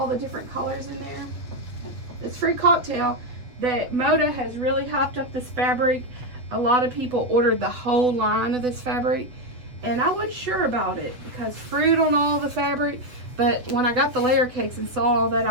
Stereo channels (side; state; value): left; late; 8.2 ms